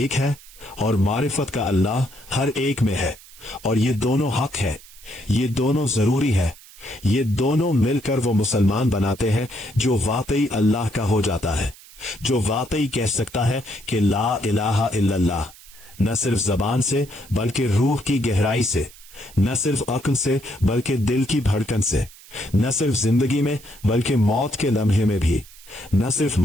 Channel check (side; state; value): right; noise; hiss, 21 dB below the sound